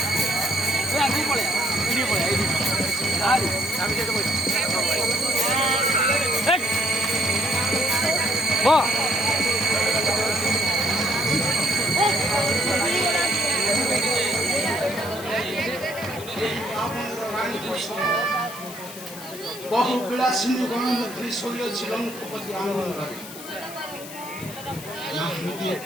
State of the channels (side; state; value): left; noise; hiss, 14 dB below the sound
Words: বহু বিলাসিনী গণমন্ত্রী শৈলছিল মুখপতি আনন্দরে